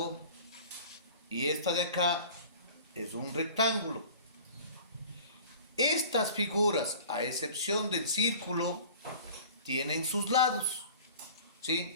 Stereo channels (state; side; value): inverted; both; correlation -0.43